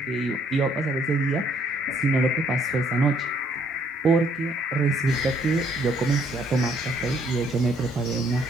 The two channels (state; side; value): normal; both; correlation 0.66